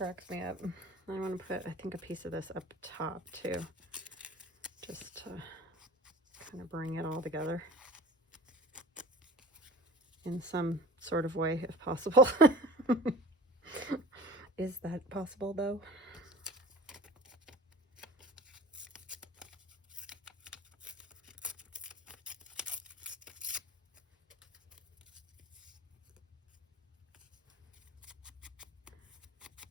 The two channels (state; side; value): normal; both; correlation 0.40